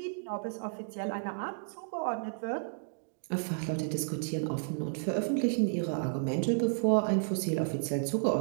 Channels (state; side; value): silent; left; digital silence